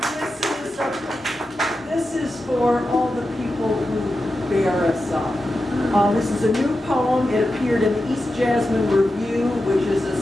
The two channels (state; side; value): normal; both; correlation 0.91